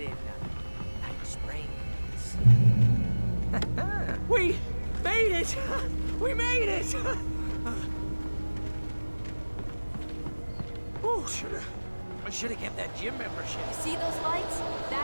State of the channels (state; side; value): inverted; both; correlation -1.00